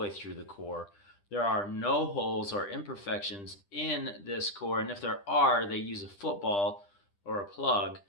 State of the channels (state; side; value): late; right; 10 ms